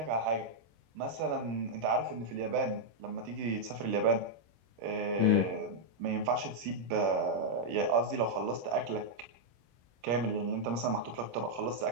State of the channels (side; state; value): left; late; 26 ms